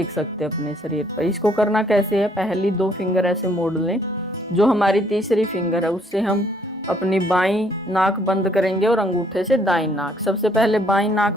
सकते हैं अपने शरीर पर। इसको करना कैसे है, पहली 2 फिंगर ऐसे मोड़ लें, जो हमारी तीसरी फिंगर है उससे हम अपनी बाईं नाक बंद करेंगे और अंगूठे से दाईं नाक। सबसे पहले बाईं नाक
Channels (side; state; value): both; normal; correlation 0.66